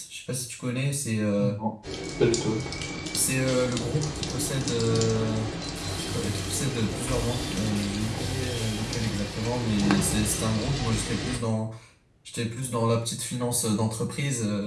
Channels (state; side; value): identical; both; correlation 1.00